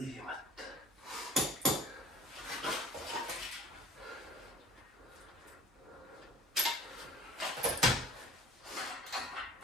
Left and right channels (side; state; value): both; normal; correlation 0.48